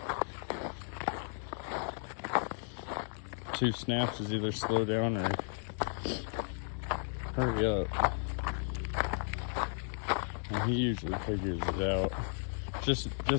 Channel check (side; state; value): right; silent; 55 dB below the other